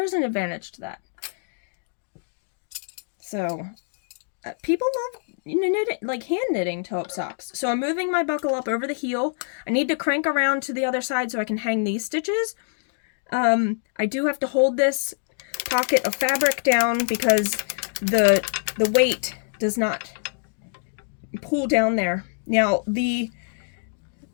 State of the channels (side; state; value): right; silent; digital silence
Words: an advantage to that. So, people love knitting, like hand knitting toe-up socks. So I'm moving my buckle up over the heel. I need to crank around to the other side so I can hang these stitches. I do have to hold this pocket of fabric down because the weight does not pull down there. Now, the